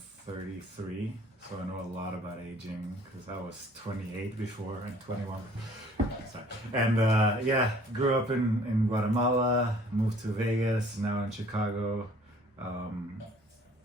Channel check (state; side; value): normal; both; correlation 0.55